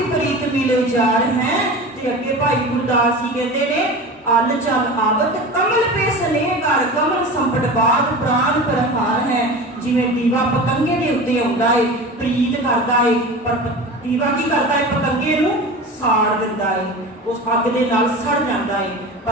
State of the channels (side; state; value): both; normal; correlation 0.32